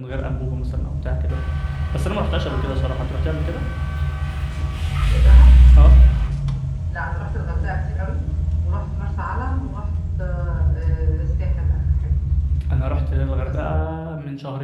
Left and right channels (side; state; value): both; identical; correlation 1.00